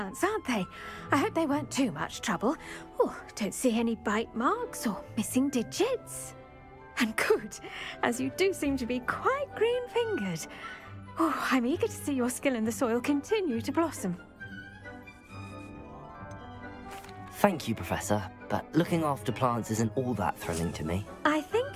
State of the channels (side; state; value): both; identical; correlation 1.00